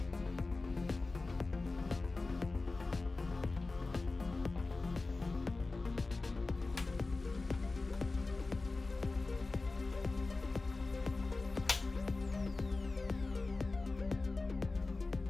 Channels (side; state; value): right; quieter; 3.5 dB